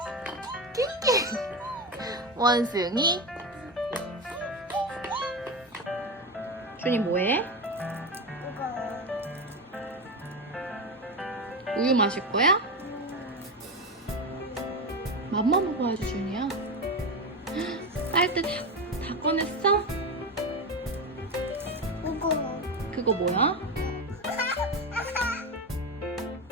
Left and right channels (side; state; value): both; normal; correlation 0.17